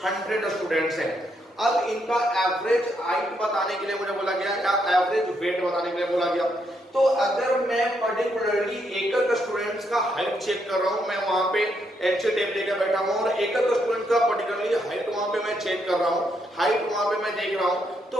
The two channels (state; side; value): normal; both; correlation 0.77